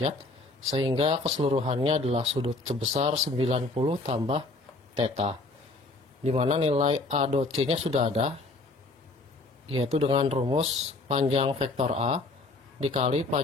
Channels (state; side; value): quieter; right; 3.2 dB